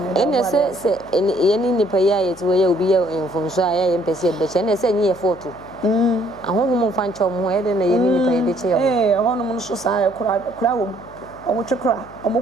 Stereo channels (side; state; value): left; noise; hum, 21 dB below the sound